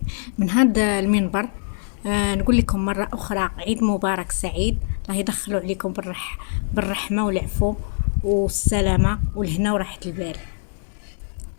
من هذا المنبر نقول لكم مرة أخرى عيد مبارك سعيد. الله يدخلوا عليكم بالرحمة والعفو والسلامة والهنا وراحة البال.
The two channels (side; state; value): right; silent; 63 dB below the other